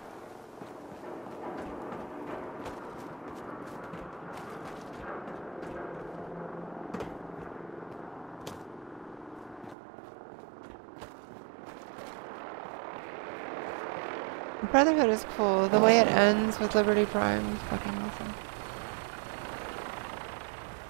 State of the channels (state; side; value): drops out; left; at 9.8 s